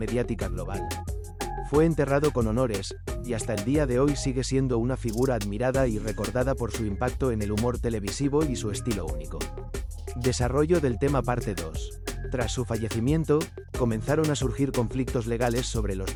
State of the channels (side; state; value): both; identical; correlation 1.00